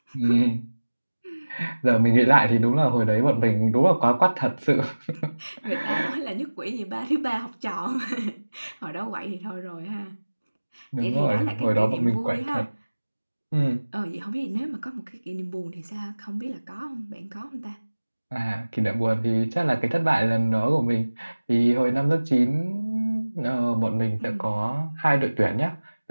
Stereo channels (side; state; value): both; inverted; correlation -1.00